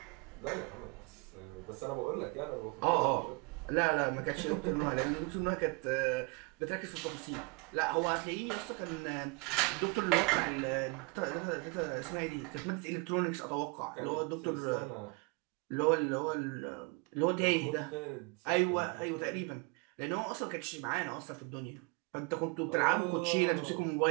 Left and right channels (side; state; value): left; quieter; 29.4 dB